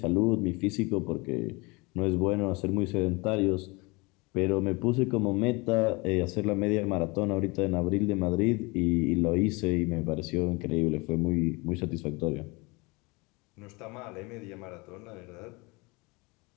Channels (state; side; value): quieter; right; 26.2 dB